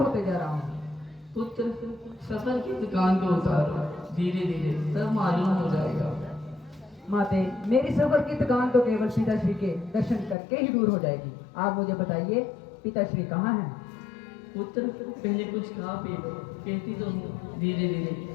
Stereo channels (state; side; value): drops out; right; at 10.4 s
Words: जा रहा हूँ। पुत्र, सफर की दुकान को उतारो, धीरे धीरे सब मालूम हो जाएगा। माते, मेरी सफर की थकान तो केवल पिताश्री के दर्शन करके ही दूर हो जाएगी। आप मुझे बताइए, पिताश्री कहाँ हैं? पुत्र, पहले कुछ खा पी लो, कहती तो हूँ धीरे धीरे